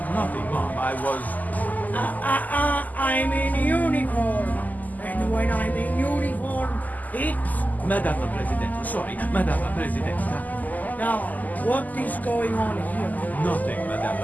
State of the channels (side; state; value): right; late; 0.081 ms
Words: Nothing, Mom. I was... I'm in uniform. And when I'm in uniform, it's... Madame la Presidente, sorry, Madame la Presidente. Now, what is going on here? Nothing, Madame